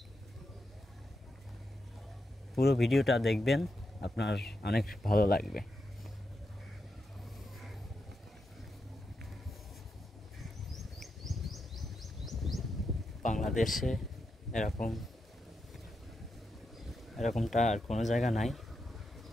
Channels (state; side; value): normal; both; correlation 0.86